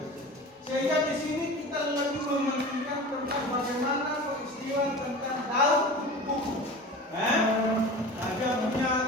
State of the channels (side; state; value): both; normal; correlation 0.35